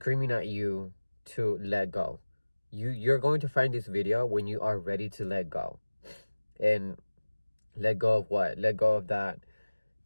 at you to let go. You're going to find this video when you are ready to let go. And let go of what? Let go of that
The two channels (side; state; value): both; inverted; correlation -1.00